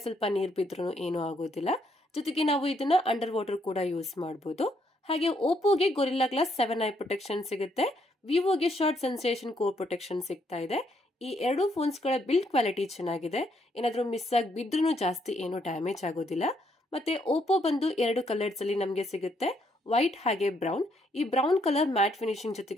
ಸ್ವಲ್ಪ ನೀರ್ ಬಿದ್ರೂ ಏನೂ ಆಗೋದಿಲ್ಲ. ಜೊತೆಗೆ ನಾವು ಇದನ್ನ ಅಂಡರ್ ವಾಟರ್ ಕೂಡ ಯೂಸ್ ಮಾಡಬಹುದು. ಹಾಗೆ ಓಪೋಗೆ ಗೊರಿಲ್ಲಾ ಗ್ಲಾಸ್ 7 ಐ ಪ್ರೊಟೆಕ್ಷನ್ ಸಿಗುತ್ತೆ. ವಿವೋಗೆ ಶಾರ್ಟ್ ಸೆನ್ಸೇಷನ್ ಕೋರ್ ಪ್ರೊಟೆಕ್ಷನ್ ಸಿಗ್ತಾ ಇದೆ. ಈ ಎರಡು ಫೋನ್ಸ್ ಗಳ ಬಿಲ್ಡ್ ಕ್ವಾಲಿಟಿ ಚೆನ್ನಾಗಿದೆ. ಏನಾದ್ರೂ ಮಿಸ್ ಆಗಿ ಬಿದ್ರೂ ಜಾಸ್ತಿ ಏನು ಡ್ಯಾಮೇಜ್ ಆಗೋದಿಲ್ಲ. ಮತ್ತೆ ಓಪೋ ಬಂದು ಎರಡು ಕಲರ್ಸ್ ಅಲ್ಲಿ ನಮಗೆ ಸಿಗುತ್ತೆ, ವೈಟ್ ಹಾಗೆ ಬ್ರೌನ್. ಈ ಬ್ರೌನ್ ಕಲರ್ ಮ್ಯಾಟ್ ಫಿನಿಶಿಂಗ್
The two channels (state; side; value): normal; both; correlation 0.72